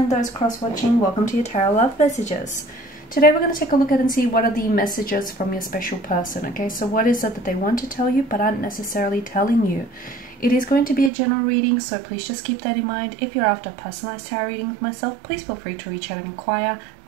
those cross-watching, welcome to your Tarot Love Messages. Today we're going to take a look at and see what are the messages from your special person, okay? So what is it that they want to tell you but aren't necessarily telling you? It is going to be a general reading, so please just keep that in mind. If you're after a personalized tarot reading with myself, please feel free to reach out and inquire.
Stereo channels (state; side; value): drops out; left; at 11.1 s